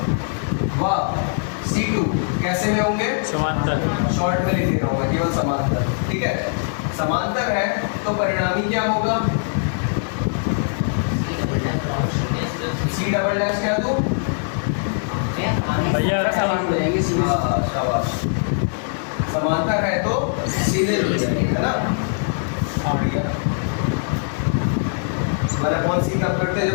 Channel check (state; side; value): silent; right; digital silence